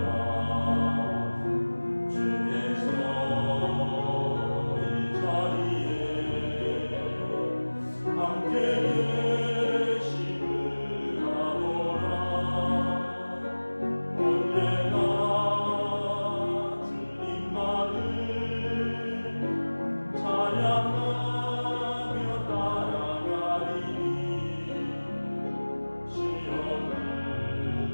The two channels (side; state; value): both; inverted; correlation -1.00